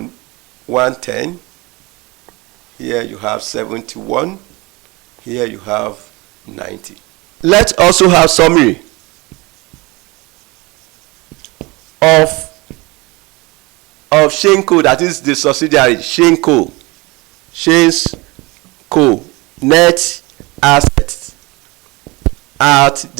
110. Here you have 71. Here you have 90. Let's also have summary of Shenco, that is the subsidiary. Shenco net assets at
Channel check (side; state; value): left; quieter; 24.3 dB